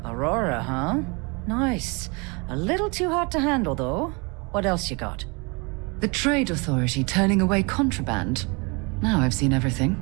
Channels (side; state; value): left; quieter; 29.8 dB